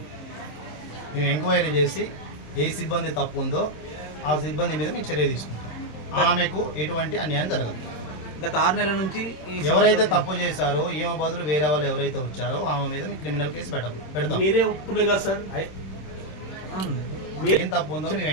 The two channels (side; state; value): right; late; 26 ms